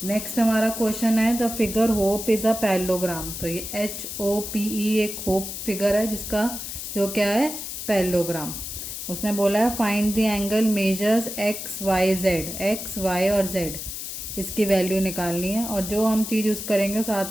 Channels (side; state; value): left; noise; hiss, 7 dB below the sound